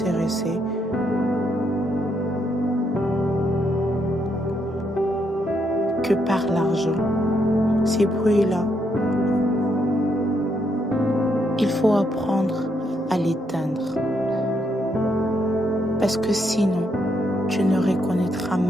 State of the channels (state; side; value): normal; both; correlation 0.76